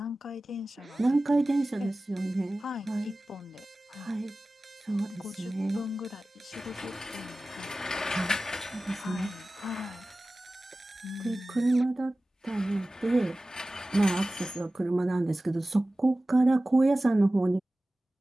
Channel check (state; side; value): normal; both; correlation 0.96